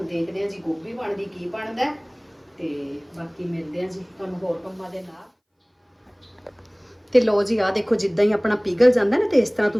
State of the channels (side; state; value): both; identical; correlation 1.00